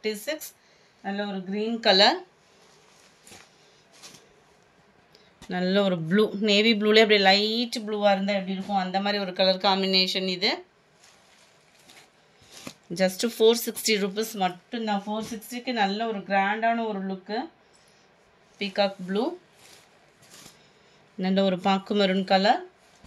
நல்ல ஒரு க்ரீன் கலர், நல்ல ஒரு ப்ளூ, நேவி ப்ளூலே அப்படியே லைட் ப்ளூவாக இருந்தால் எப்படி இருக்கும் அந்த மாதிரி ஒரு கலர் காம்பினேஷன் இது. ஜஸ்ட்டு 460 rupees மட்டும்தான். 460க்கு நல்ல ஒரு கிராண்டான ஒரு லுக்கு. பீகாக் ப்ளூ, நல்ல ஒரு பாக்கு maroon colour,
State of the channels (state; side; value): identical; both; correlation 1.00